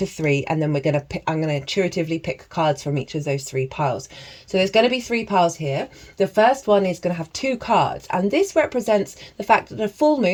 3, and then I'm going to intuitively pick cards from each of those 3 piles. So there's going to be 3 piles here. The first one is going to have 2 cards, and this represents the fact that a full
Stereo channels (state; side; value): identical; both; correlation 1.00